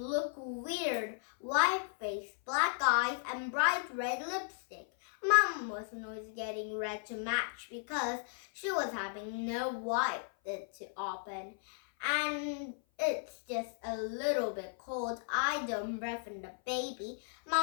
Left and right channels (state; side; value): silent; right; 54 dB below the other